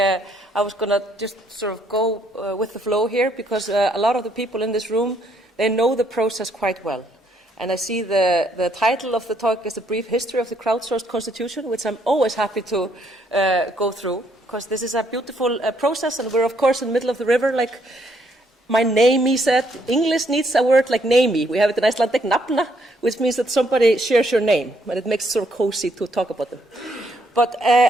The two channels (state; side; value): normal; both; correlation 0.71